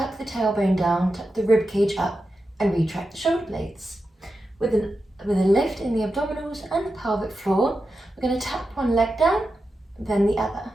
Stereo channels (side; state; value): both; normal; correlation 0.90